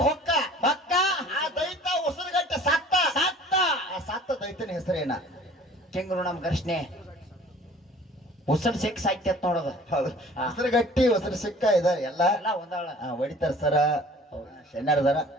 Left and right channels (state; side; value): normal; both; correlation 0.49